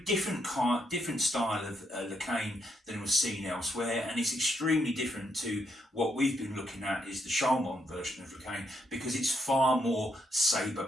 different style of the cane than was seen elsewhere, and it's extremely different to what we've been looking at is the Charmont version of the cane, because it's far more sabre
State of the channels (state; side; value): normal; both; correlation 0.77